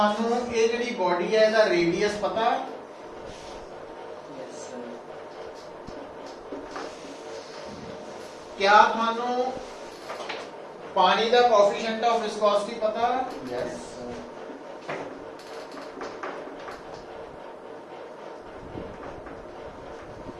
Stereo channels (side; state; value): both; identical; correlation 1.00